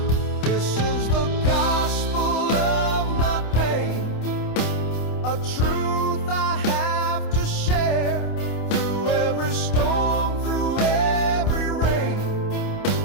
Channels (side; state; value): right; late; 28 ms